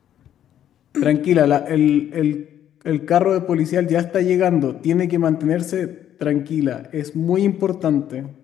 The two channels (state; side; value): quieter; right; 10.7 dB